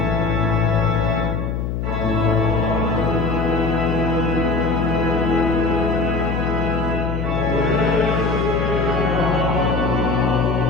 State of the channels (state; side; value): noise; left; hum, 2 dB below the sound